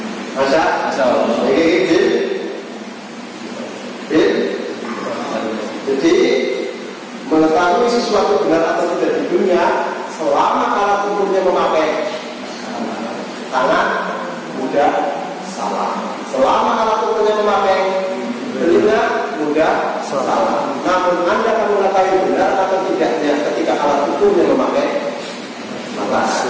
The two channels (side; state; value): both; identical; correlation 1.00